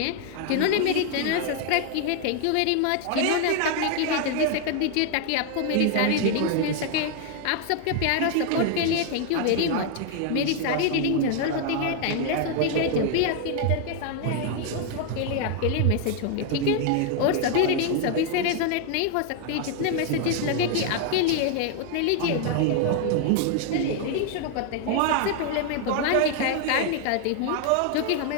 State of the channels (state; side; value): different; both; correlation 0.00